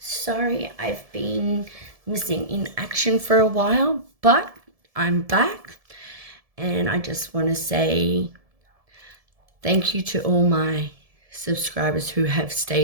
I've been missing in action for a while, but I'm back and I just want to say thank you to all my subscribers who have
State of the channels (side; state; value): left; late; 1.7 ms